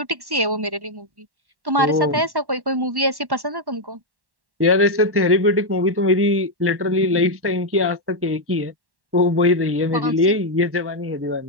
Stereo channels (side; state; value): left; late; 1.1 ms